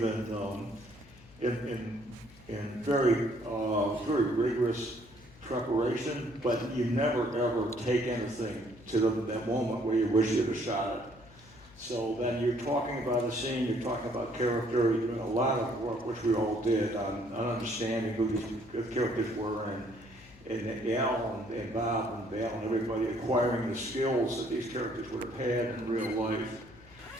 in very rigorous preparation, but you never ever take anything to that moment where you wish you'd have shot it. So then you're talking about a scene, you're talking about character, you're doing a lot of work, which we all did, on understanding who these characters were, and Al and Bob and Val and everybody acquiring the skills that these characters would have had in real life.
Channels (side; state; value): left; noise; hum, 23 dB below the sound